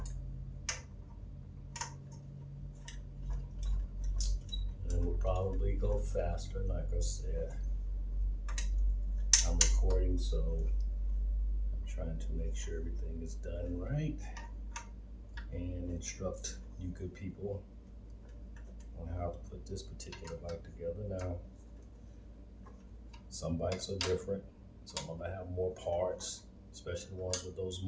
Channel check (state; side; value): identical; both; correlation 1.00